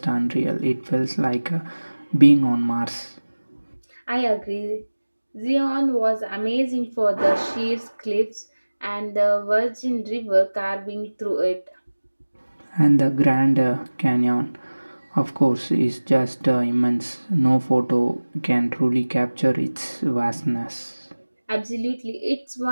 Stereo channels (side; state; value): both; inverted; correlation -1.00